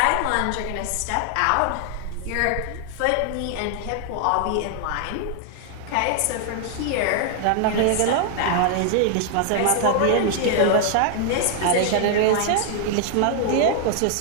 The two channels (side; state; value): both; different; correlation 0.00